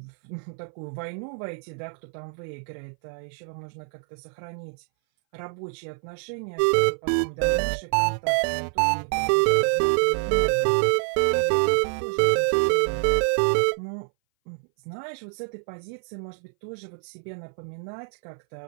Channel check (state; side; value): silent; left; 59 dB below the other